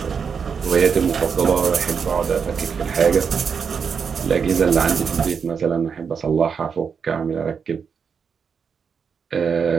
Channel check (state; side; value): quieter; left; 6.3 dB